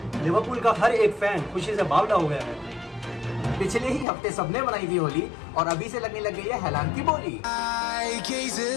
लिवरपूल का हर एक फैन खुशी से बावला हो गया है। पिछले ही हफ्ते सबने बनाई थी होली और अभी से लगने लग गई है हैलान की बोली।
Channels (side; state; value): right; drops out; at 4.0 s